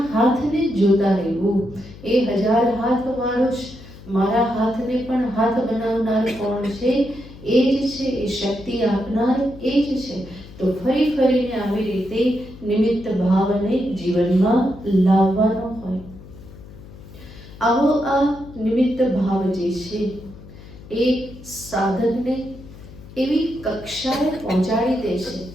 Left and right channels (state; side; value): noise; left; hum, 18 dB below the sound